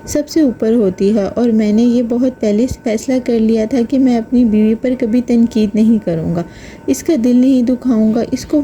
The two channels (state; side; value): identical; both; correlation 1.00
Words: سب سے اوپر ہوتی ہے، اور میں نے یہ بہت پہلے فیصلہ کر لیا تھا کہ میں اپنی بیوی پر کبھی تنقید نہیں کروں گا، اس کا دل نہیں دکھاؤں گا، اس کو